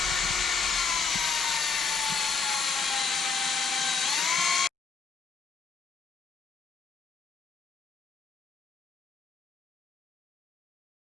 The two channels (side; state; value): right; quieter; 4.8 dB